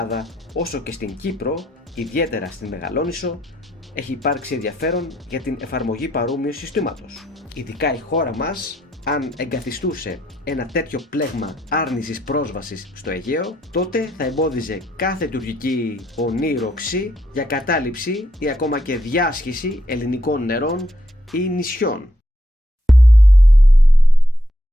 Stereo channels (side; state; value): both; normal; correlation 0.78